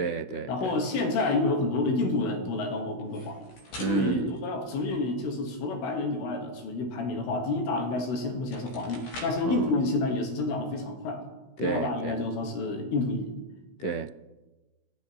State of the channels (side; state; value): right; late; 16 ms